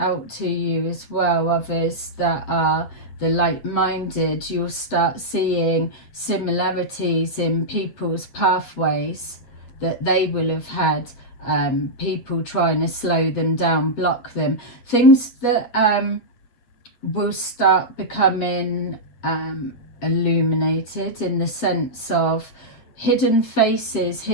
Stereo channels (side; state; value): right; late; 8.5 ms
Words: to you as well. Others that are the like-minded, you'll start seeing similarities in people's pathways that they will have had, people trying to slow them down, block them, things that will start becoming illuminated, in the sense of hidden faces,